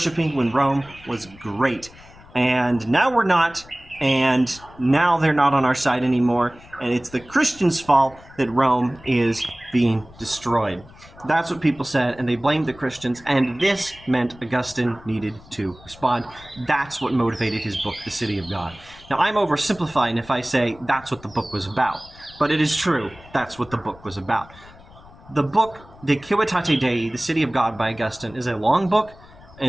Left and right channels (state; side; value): noise; left; rumble, 22 dB below the sound